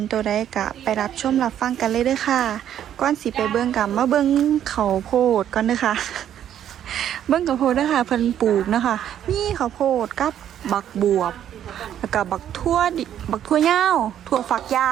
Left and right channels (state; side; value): quieter; left; 10.4 dB